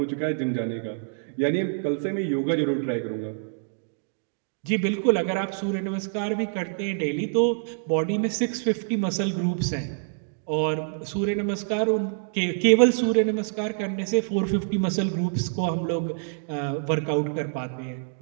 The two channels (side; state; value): left; silent; digital silence